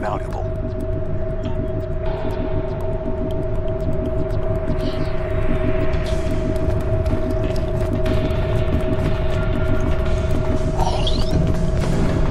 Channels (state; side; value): identical; both; correlation 1.00